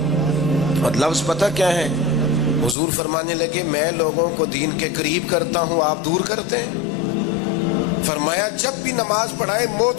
اور لفظ پتہ کیا ہے؟ حضور فرمانے لگے میں لوگوں کو دین کے قریب کرتا ہوں، آپ دور کرتے ہیں۔ فرمایا جب بھی نماز پڑھائیں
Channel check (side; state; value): right; drops out; at 2.8 s